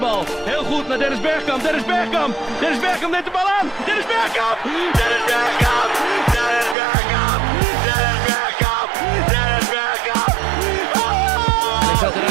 Heel goed naar Dennis Bergkamp. Dennis Bergkamp. Dennis Bergkamp neemt de bal aan. Dennis Bergkamp. Dennis Bergkamp. Dennis Bergkamp. Dennis Bergkamp. Dennis Bergkamp.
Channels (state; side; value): drops out; left; at 6.8 s